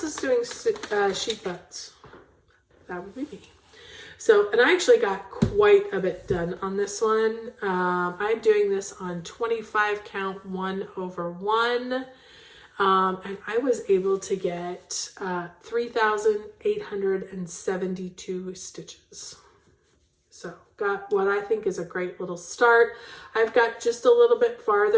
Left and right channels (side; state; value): both; identical; correlation 1.00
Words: is doing sheep butts. That would be me. So, and I actually got quite a bit done on this one. I'm doing this on 25 count 1/1. And I was able to get 3,872 stitches. So got what I think is a great little start. I've got just a little bit